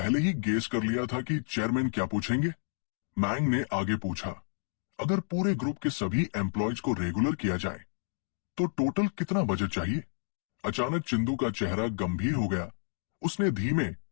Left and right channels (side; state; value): right; silent; digital silence